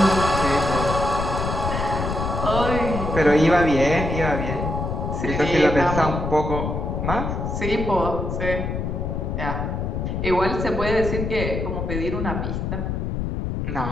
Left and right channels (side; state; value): left; noise; rumble, 2 dB below the sound